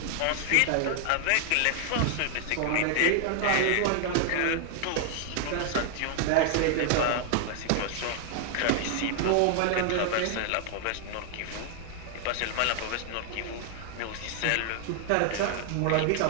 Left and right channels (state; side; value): different; both; correlation 0.00